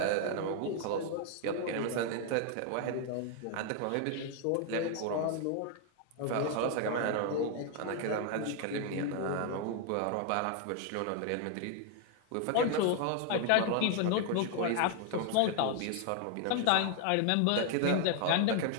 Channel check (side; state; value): both; different; correlation 0.00